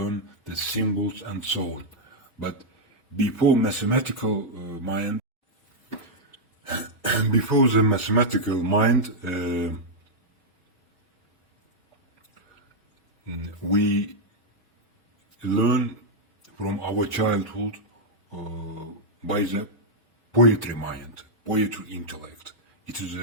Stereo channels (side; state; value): both; normal; correlation -0.04